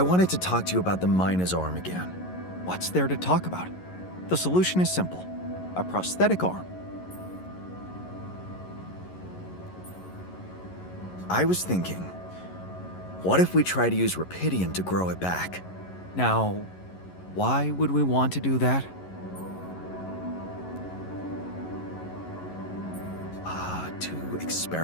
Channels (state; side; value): late; right; 11 ms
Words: to talk to you about the Mina's arm again. What's there to talk about? The solution is simple. A prosthetic arm. I was thinking, what if we try to use rupidium to grow it back? Now, why would we want to do that? To